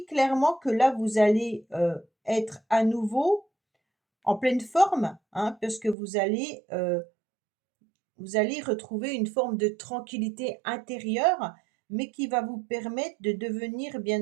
clairement que là, vous allez être à nouveau en pleine forme, hein, parce que vous allez retrouver une forme de tranquillité intérieure, mais qui va vous permettre de devenir,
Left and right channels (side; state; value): left; drops out; at 6.0 s